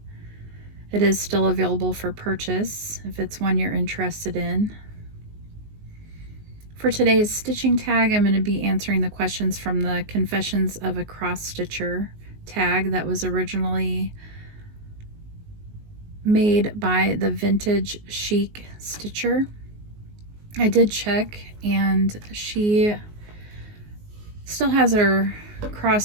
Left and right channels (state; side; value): late; left; 19 ms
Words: It is still available for purchase if it's one you're interested in. For today's stitching tag, I'm going to be answering the questions from the Confessions of a Cross Stitcher tag that was originally made by the Vintage Chic Stitcher. I did check, and she still has her